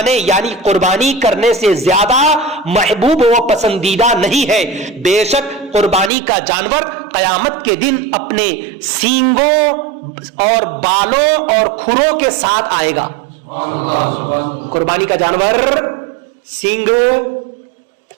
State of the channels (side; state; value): left; drops out; at 6.1 s